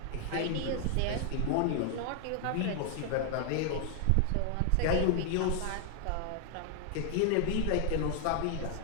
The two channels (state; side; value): different; both; correlation 0.00